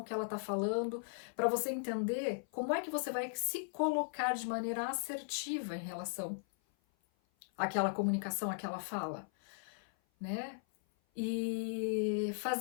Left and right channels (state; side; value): silent; right; 53 dB below the other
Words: que ela está falando, para você entender como é que você vai se colocar de maneira assertiva em relação àquela comunicação, àquela fala, né? E